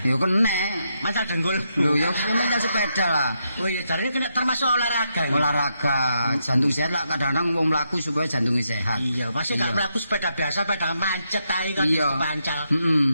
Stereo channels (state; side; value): inverted; both; correlation -0.81